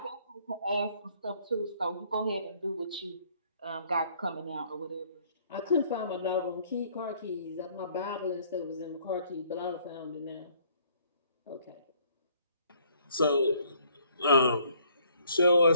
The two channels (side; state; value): both; inverted; correlation -0.62